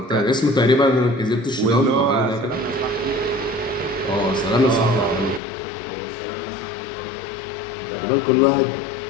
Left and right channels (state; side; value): drops out; right; at 5.4 s